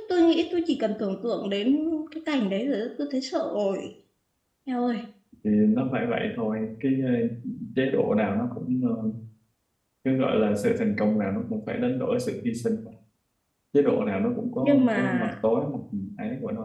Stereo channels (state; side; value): identical; both; correlation 1.00